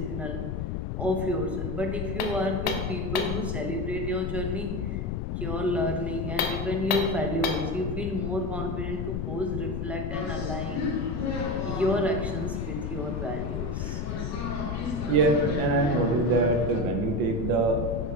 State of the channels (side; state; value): left; noise; rumble, 2 dB below the sound